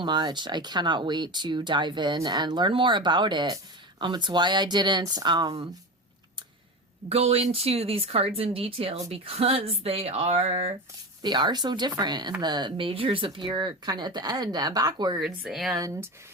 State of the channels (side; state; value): both; normal; correlation 0.25